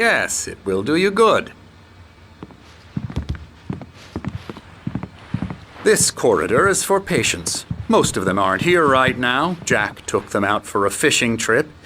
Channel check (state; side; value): identical; both; correlation 1.00